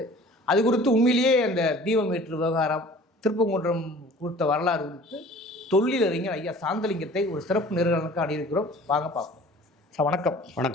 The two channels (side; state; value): both; normal; correlation 0.47